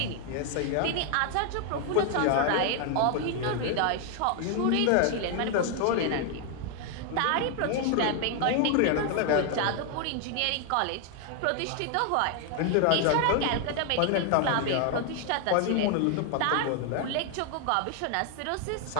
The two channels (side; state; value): both; different; correlation 0.00